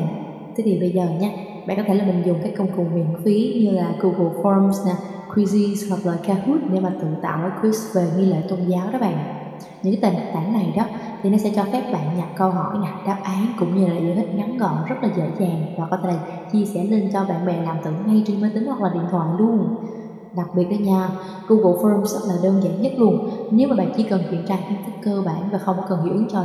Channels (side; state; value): both; identical; correlation 1.00